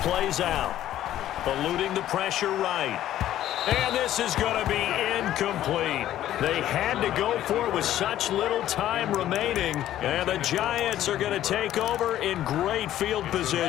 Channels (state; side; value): quieter; right; 12.7 dB